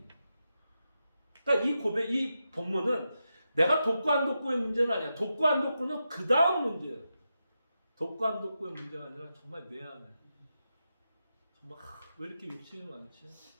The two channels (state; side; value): inverted; both; correlation -0.88